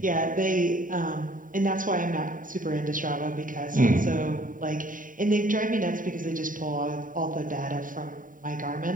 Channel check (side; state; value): left; late; 0.39 ms